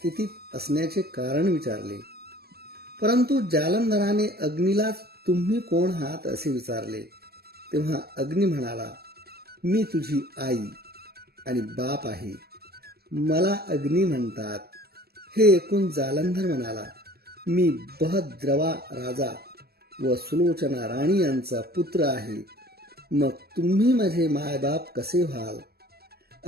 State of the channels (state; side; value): late; left; 0.46 ms